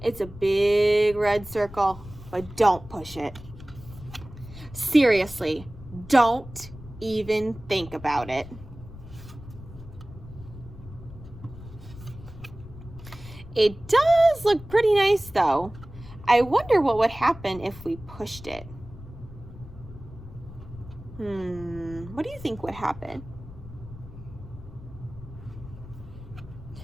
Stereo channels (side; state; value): left; noise; rumble, 16 dB below the sound